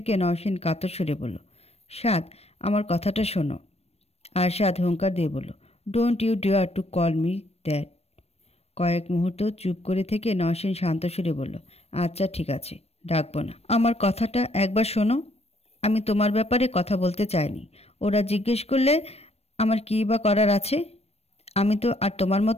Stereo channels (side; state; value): right; late; 0.30 ms